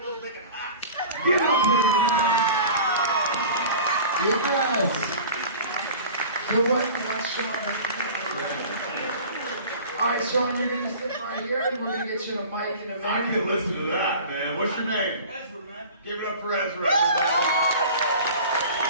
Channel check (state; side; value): inverted; both; correlation -0.40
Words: thinking hacks. Get out there, Yes. So what you want, Sean? All right, Sean, you're going to stick right here, and we're going to get you the mic in a minute. I can listen to that, man. What's your name? Ezra, man. Give it up for Ezra.